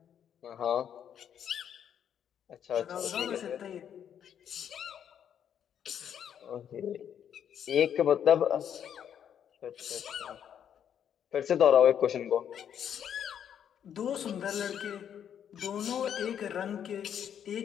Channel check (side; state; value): right; quieter; 9.0 dB